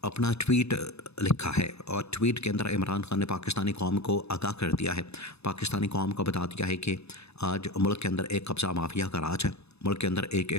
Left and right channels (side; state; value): right; late; 0.79 ms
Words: अपना ट्वीट लिखा है। और ट्वीट के अंदर इमरान खान ने पाकिस्तानी कौम को आगाह कर दिया है, पाकिस्तानी कौम को बता दिया है कि आज मुल्क के अंदर एक कब्ज़ा माफिया का राज है, मुल्क के अंदर एक